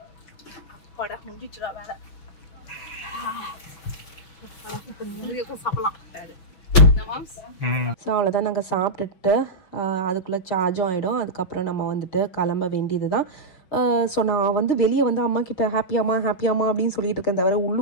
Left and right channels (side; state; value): right; late; 6.1 ms